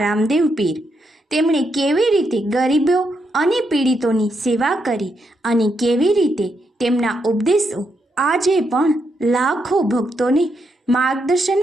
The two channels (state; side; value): normal; both; correlation 0.80